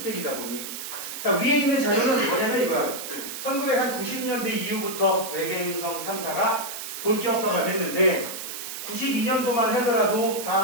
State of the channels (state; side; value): noise; right; hiss, 8 dB below the sound